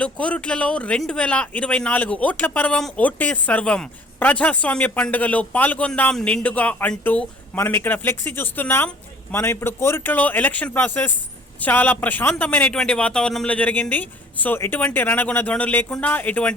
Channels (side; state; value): both; normal; correlation 0.52